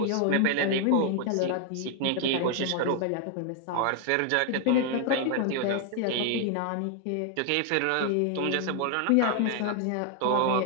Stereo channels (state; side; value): different; both; correlation 0.00